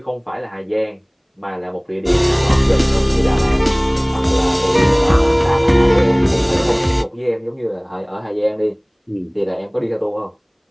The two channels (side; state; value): both; identical; correlation 1.00